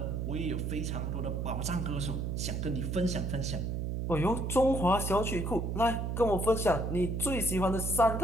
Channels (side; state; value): right; noise; hum, 2 dB below the sound